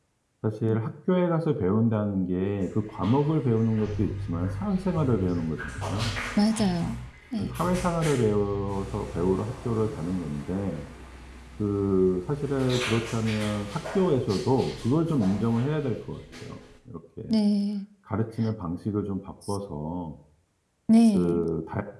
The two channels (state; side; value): identical; both; correlation 1.00